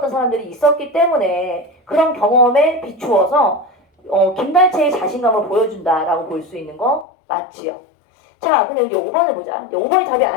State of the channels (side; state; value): right; drops out; at 7.1 s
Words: 사람들이 있었기 때문에 그런 경험에 비추어서 김달채의 자신감을 보여준다라고 볼 수 있는 거 맞지요. 자, 근데 여기 5번을 보자. 5번이 답이